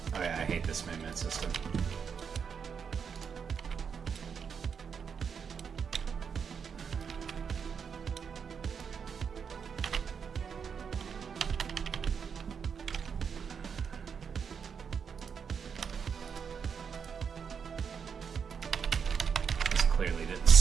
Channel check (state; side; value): quieter; left; 6.6 dB